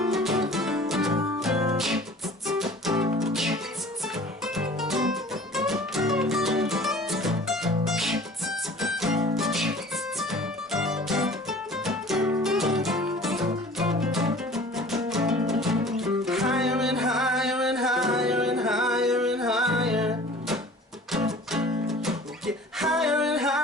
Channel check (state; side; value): normal; both; correlation 0.46